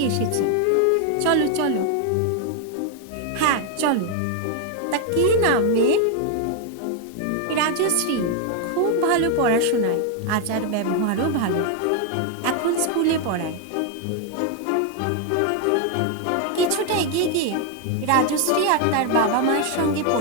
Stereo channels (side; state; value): both; different; correlation 0.01